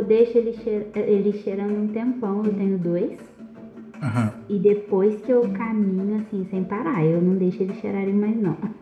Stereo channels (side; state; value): both; identical; correlation 1.00